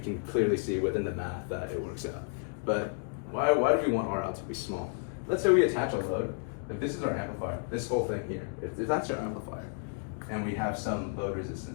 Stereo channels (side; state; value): right; silent; 57 dB below the other